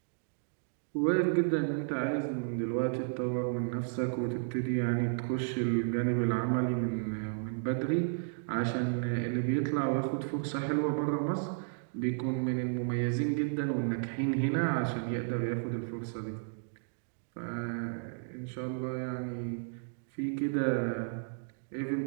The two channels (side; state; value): left; silent; digital silence